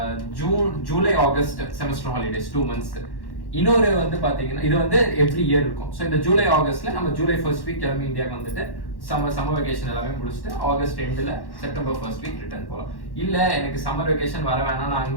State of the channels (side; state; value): right; late; 1.1 ms